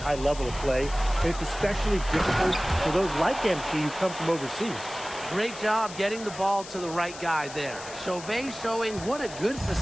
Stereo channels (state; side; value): noise; left; hiss, 14 dB below the sound